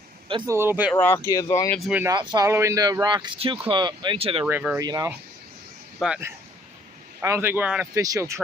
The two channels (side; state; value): both; normal; correlation 0.61